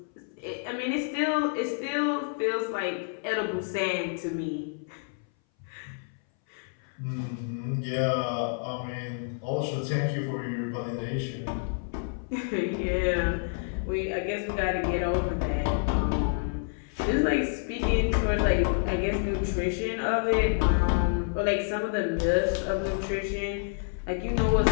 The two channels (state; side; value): silent; right; 59 dB below the other